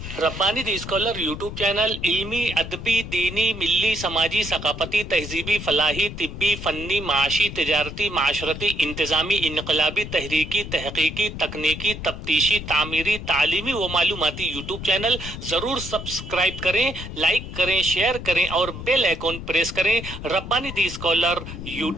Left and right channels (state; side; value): noise; left; rumble, 9 dB below the sound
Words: Rabbani the scholar YouTube channel इल्मी, अदबी, दीनी, मिली, समाजी, सकाफती, तहजीबी, फलाही, तिब्बी, फन्नी, माशी, तिजारती, माशरती, इंतजामी, इनकलाबी, तहरीकी, तहकीकी, तकनीकी, तफ्तीशी, तामीरी, तालीमी व मालूमाती यूट्यूब चैनल। ज़रूर सब्सक्राइब करें, लाइक करें, शेयर करें और बेल आइकन प्रेस करें। Rabbani the scholar